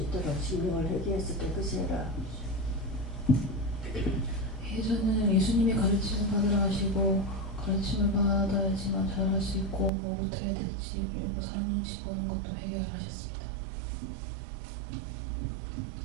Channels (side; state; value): left; drops out; at 9.9 s